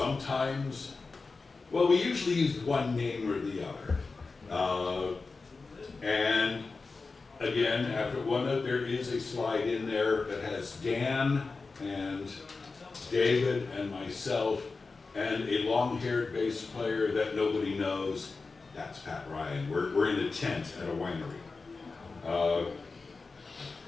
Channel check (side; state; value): right; quieter; 4.1 dB